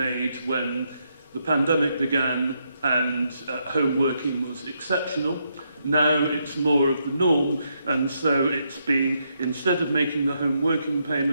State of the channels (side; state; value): both; inverted; correlation -0.78